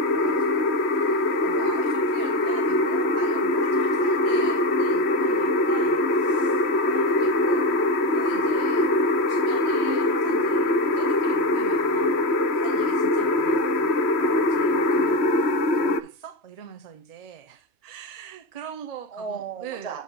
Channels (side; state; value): right; late; 3.0 ms